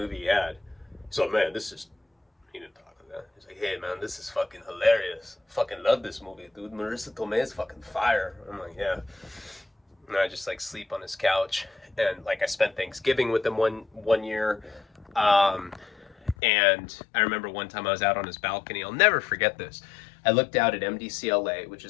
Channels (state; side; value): drops out; right; at 16.4 s